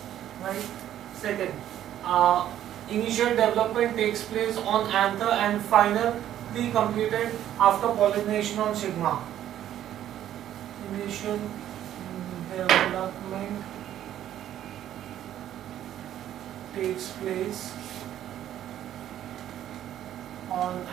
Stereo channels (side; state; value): left; quieter; 11.6 dB